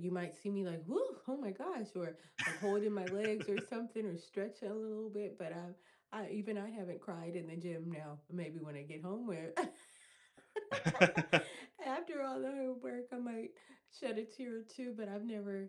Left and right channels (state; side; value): identical; both; correlation 1.00